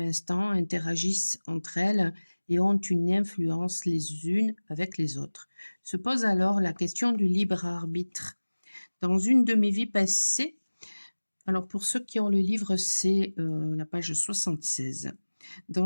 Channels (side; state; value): both; inverted; correlation -1.00